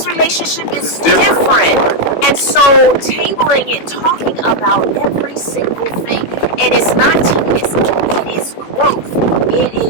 relationship is different. And so tabling it, talking about every single thing, and it's not tedious, it is growth. It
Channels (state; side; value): late; right; 18 ms